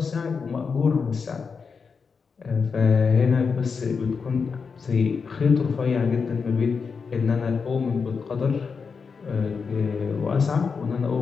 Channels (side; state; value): right; quieter; 5.4 dB